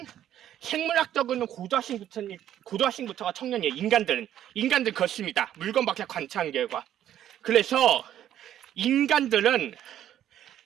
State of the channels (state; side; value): quieter; left; 11.3 dB